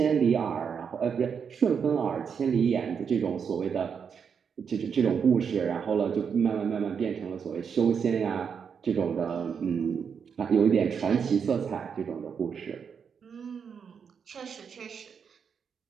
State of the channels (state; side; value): quieter; left; 6.7 dB